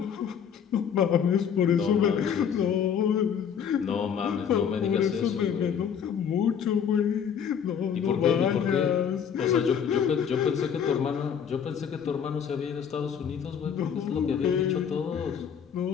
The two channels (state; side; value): quieter; right; 7.8 dB